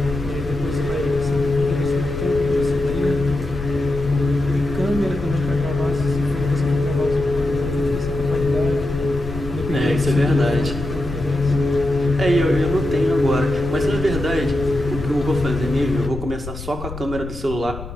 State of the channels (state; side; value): noise; left; rumble, 10 dB below the sound